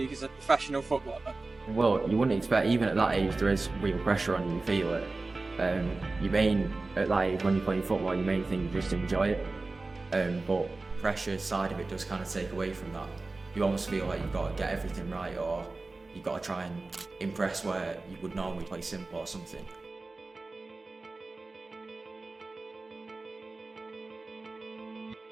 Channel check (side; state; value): left; quieter; 3.4 dB